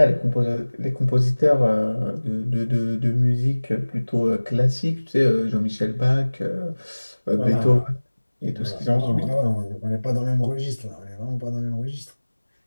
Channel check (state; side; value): inverted; both; correlation -1.00